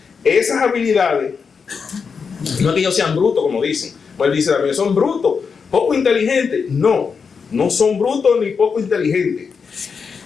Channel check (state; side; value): quieter; right; 5.7 dB